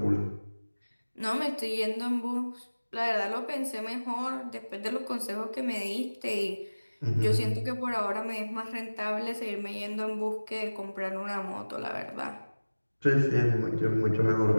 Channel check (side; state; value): both; inverted; correlation -1.00